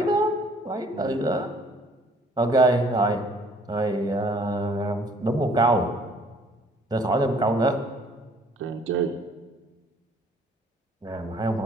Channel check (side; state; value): both; normal; correlation 0.58